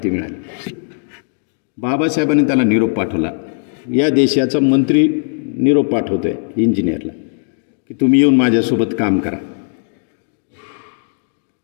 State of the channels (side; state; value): right; silent; 63 dB below the other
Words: मिळाली. बाबासाहेबांनी त्याला निरोप पाठवला. या देशाचा मंत्री निरोप पाठवतोय इंजिनियरला की तुम्ही येऊन माझ्यासोबत काम करा.